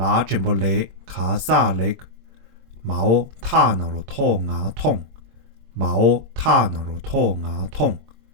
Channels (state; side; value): late; left; 22 ms